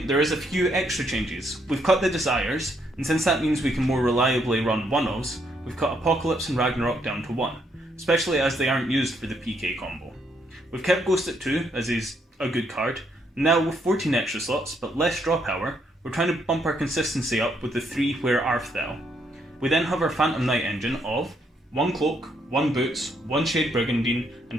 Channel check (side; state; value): both; normal; correlation 0.73